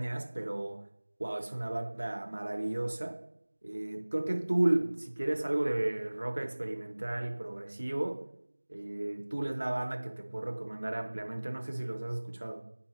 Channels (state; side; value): inverted; both; correlation -1.00